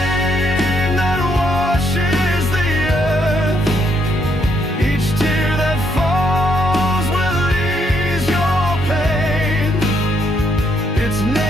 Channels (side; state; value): both; normal; correlation 0.74